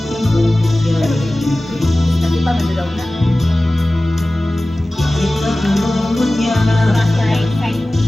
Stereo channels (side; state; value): both; normal; correlation 0.97